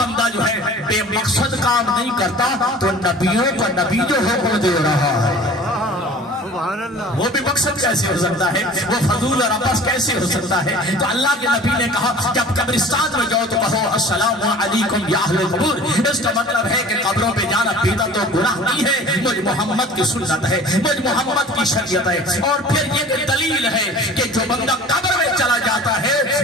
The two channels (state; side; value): normal; both; correlation 0.44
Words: جو ہے بے مقصد کام نہیں کرتا تو نبیوں کا نبی جو حکم دے رہا ہے وہ بھی مقصد کیسے ہو سکتا ہے، وہ فضول اور عبث کیسے ہو سکتا ہے؟ تو اللہ کے نبی نے کہا جب قبرستان میں جاؤ تو کہو السلام علیکم یا اہل قبور۔ اس کا مطلب ہے کہ قبروں پہ جانا بدعت تو گناہ نہیں ہے، مجھ محمد کی سنت ہے، مجھ محمد کی شریعت ہے۔ اور پھر یہ دلیل ہے کہ جو بندہ قبر میں چلا جاتا ہے